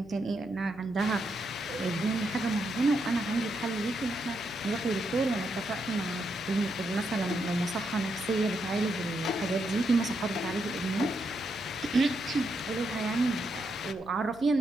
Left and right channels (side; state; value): right; noise; hum, 21 dB below the sound